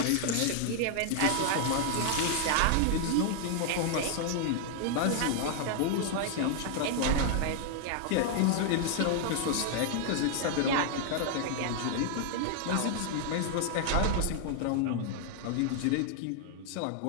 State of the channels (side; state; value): both; different; correlation 0.00